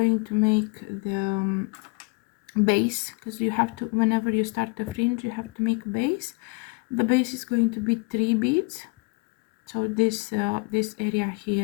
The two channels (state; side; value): quieter; right; 29.3 dB